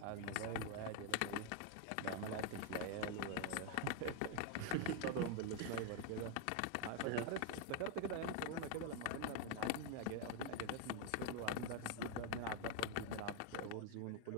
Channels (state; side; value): different; both; correlation 0.01